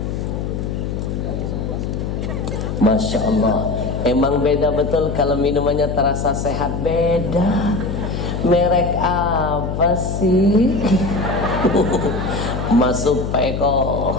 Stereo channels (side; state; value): left; noise; hum, 3 dB below the sound